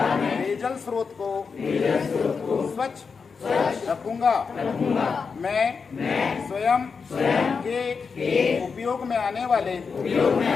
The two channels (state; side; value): quieter; right; 5.4 dB